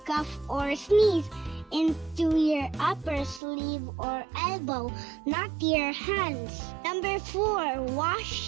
cough or sneeze into your upper sleeve or elbow, not your hands. Number 4.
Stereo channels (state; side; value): drops out; left; at 3.4 s